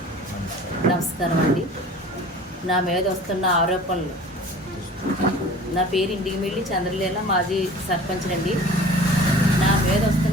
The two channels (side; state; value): both; normal; correlation 0.44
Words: నమస్కారం అండి. నా మీద వస్తున్న ఆరోపణలు, నా పేరు ఇండిగిమిల్లి చంద్రలీల, మాజీ సర్పంచ్ అండి. నా మీద